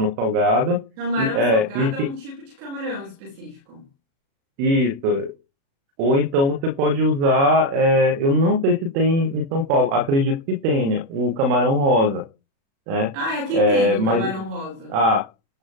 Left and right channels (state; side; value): late; left; 36 ms